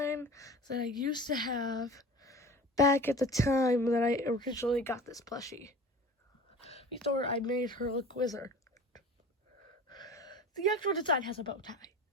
that I used to have back at the time that I originally got this plushie. Before I made her look wizard. The actual design has a bow tie.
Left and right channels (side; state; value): both; normal; correlation 0.39